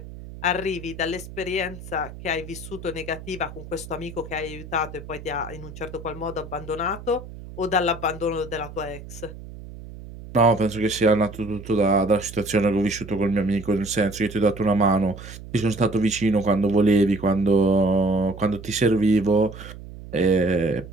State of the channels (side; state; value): right; noise; hum, 14 dB below the sound